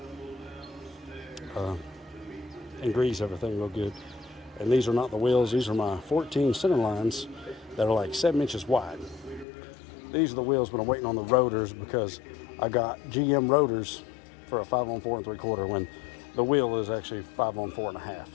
And grease everything real good. And these are not the wheels, these are my 14 center lines that are like 7 inches wide. These are the wheels, but I'm waiting on the rotors because I got GM rotors for a 5 on 4 3/4 when the wheel is actually 5 on 4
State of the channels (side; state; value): right; drops out; at 9.5 s